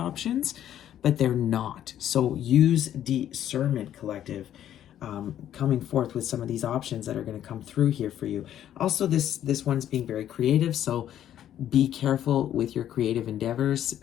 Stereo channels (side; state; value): right; quieter; 11.1 dB